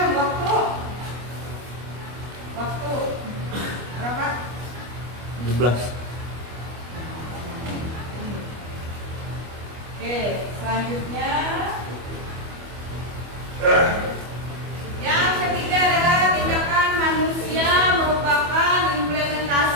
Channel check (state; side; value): late; left; 25 ms